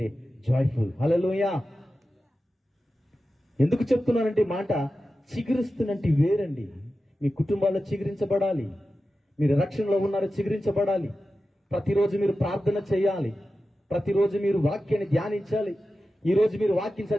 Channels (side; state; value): both; normal; correlation 0.93